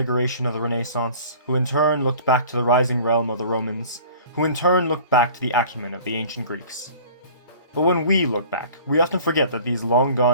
of the Renaissance, who in turn looked back to the rising realm of the Romans, who in turn looked back to the acumen of the ancient Greeks. But when we look back, we often forget that these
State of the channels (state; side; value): inverted; both; correlation -0.46